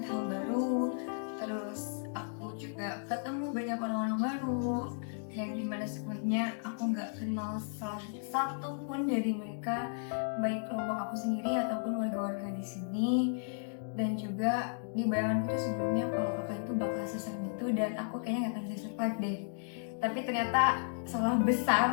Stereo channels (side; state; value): right; silent; digital silence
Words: hal baru, terus aku juga ketemu banyak orang-orang baru yang dimana sebelumnya aku nggak kenal salah satu pun dari mereka, baik kelompok aku sendiri ataupun warga-warga di sini. Dan juga di bayanganku tuh sebelumnya kalau kakak itu bakal seserem itu dan aku kayaknya nggak akan bisa survive deh. Tapi ternyata salah